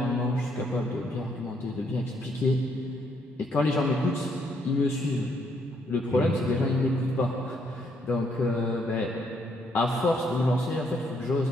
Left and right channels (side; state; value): both; normal; correlation 0.72